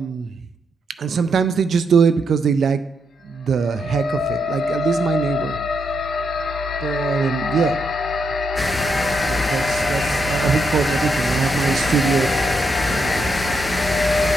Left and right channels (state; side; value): normal; both; correlation 0.79